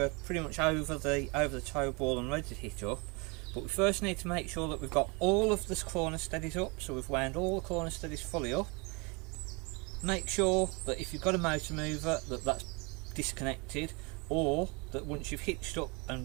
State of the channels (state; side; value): quieter; left; 29.7 dB